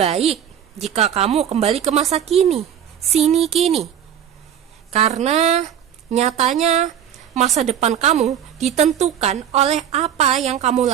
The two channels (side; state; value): left; quieter; 9.4 dB